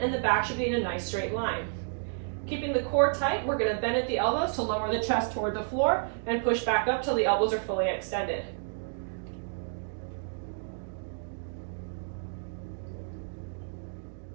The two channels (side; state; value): left; silent; digital silence